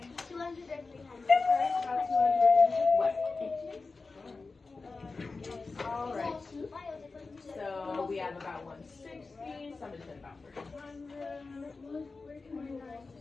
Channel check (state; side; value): quieter; right; 4.0 dB